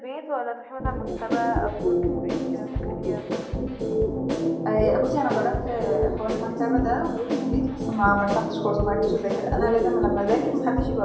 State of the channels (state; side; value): identical; both; correlation 1.00